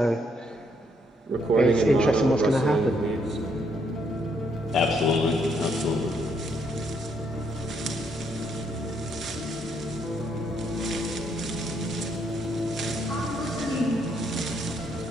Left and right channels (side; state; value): both; normal; correlation 0.72